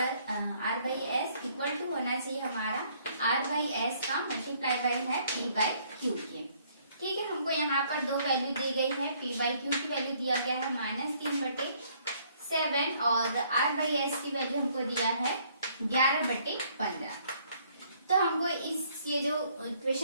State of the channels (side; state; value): both; inverted; correlation -0.64